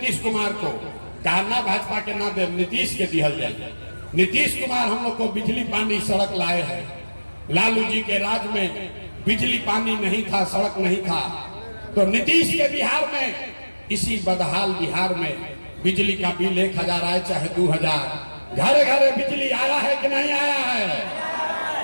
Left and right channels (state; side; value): inverted; both; correlation -1.00